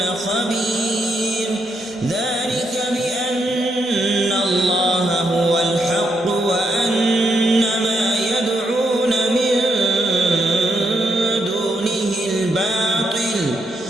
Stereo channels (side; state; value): both; normal; correlation 0.78